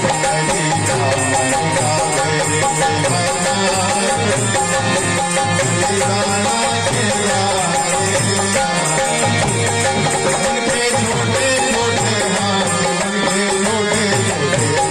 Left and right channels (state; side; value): identical; both; correlation 1.00